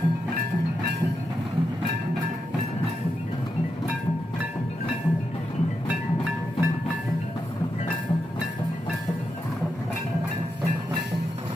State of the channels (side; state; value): both; normal; correlation 0.85